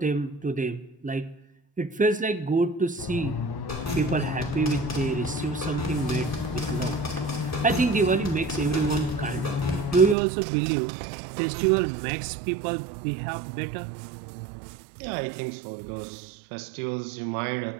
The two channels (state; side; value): drops out; left; at 10.2 s